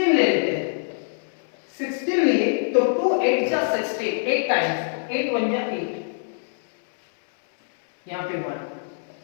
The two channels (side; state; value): right; silent; 63 dB below the other